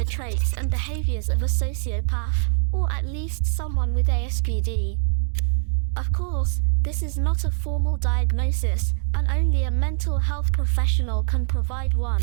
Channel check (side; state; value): left; silent; digital silence